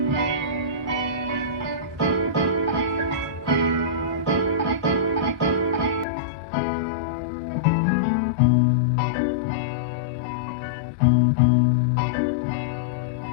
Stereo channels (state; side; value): drops out; right; at 6.1 s